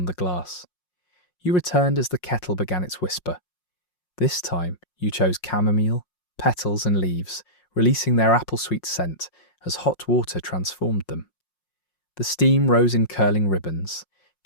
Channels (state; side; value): late; right; 5.6 ms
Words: the glass. You returned as the kettle began its whisper. This time, you chose chamomile, petals and leaves, releasing their apple-sweet scent as hot water transformed them. The steam rose in curling ribbons,